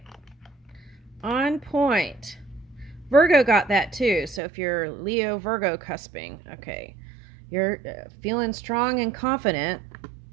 On point. Virgo got that too. So if you're Leo Virgo cusping, okay. You're feeling strong and confident,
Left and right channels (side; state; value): left; drops out; at 4.4 s